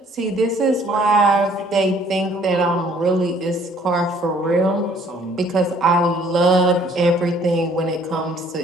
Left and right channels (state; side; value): normal; both; correlation 0.59